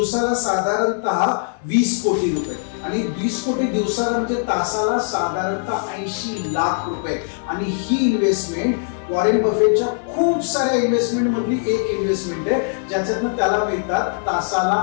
साधारणतः 20 कोटी रुपये आणि 20 कोटी दिवसाला म्हणजे तासाला साधारणतः 80 लाख रुपये. आणि ही इन्व्हेस्टमेंट वॉरेन बफेटच्या खूप साऱ्या इन्व्हेस्टमेंट मधली एक इन्व्हेस्टमेंट आहे ज्याच्यातून त्याला मिळतात तासाला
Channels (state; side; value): silent; right; digital silence